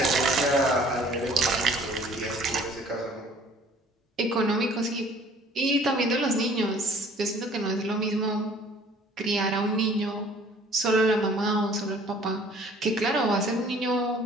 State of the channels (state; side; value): normal; both; correlation 0.53